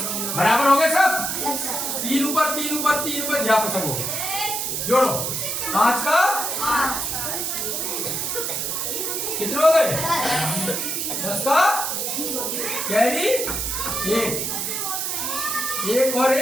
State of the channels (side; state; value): right; noise; hiss, 1 dB below the sound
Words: बराबर हो गए सब? 3 ऊपर 3 ऊपर 3 ऊपर, यहाँ पर सब हो गए। जोड़ो 5 का कितने हो गए? 10 का कैरी 1 और